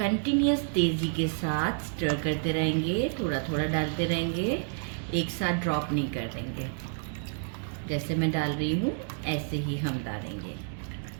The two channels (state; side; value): silent; left; digital silence